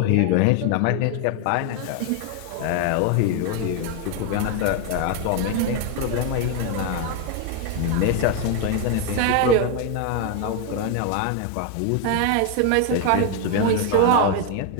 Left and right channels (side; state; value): both; different; correlation 0.01